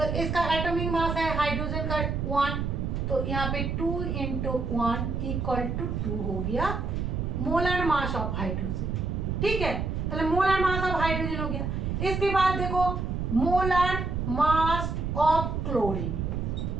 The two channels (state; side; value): noise; right; rumble, 2 dB below the sound